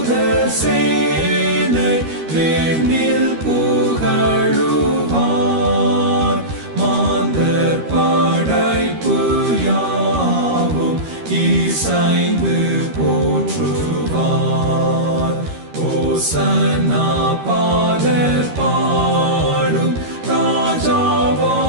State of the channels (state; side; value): late; left; 13 ms